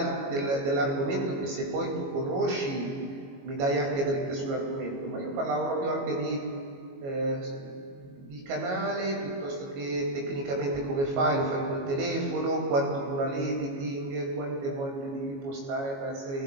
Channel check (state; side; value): late; left; 22 ms